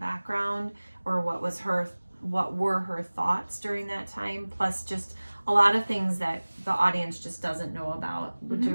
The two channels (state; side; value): inverted; both; correlation -1.00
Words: or what were her thoughts during that time, plus just a lot of things that the audience just doesn't know about, which